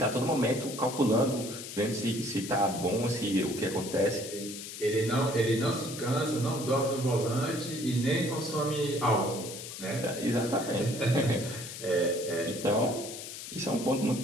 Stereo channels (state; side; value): noise; left; hiss, 10 dB below the sound